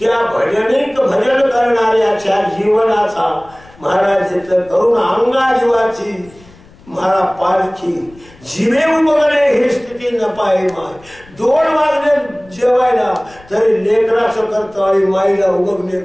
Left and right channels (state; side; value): noise; left; rumble, 25 dB below the sound